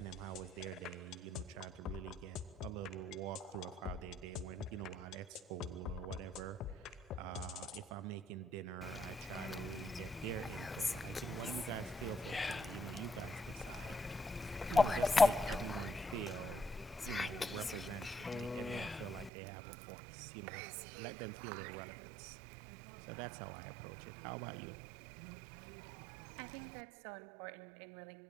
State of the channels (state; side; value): drops out; left; at 19.3 s